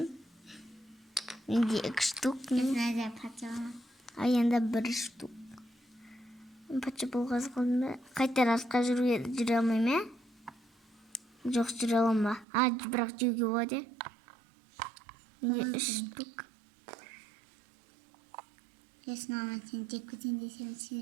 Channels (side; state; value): left; drops out; at 12.5 s